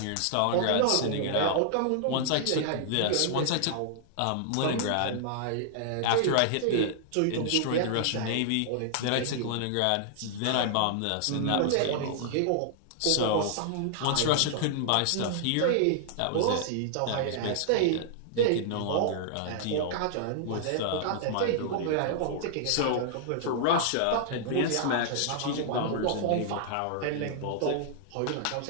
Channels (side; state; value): both; different; correlation -0.01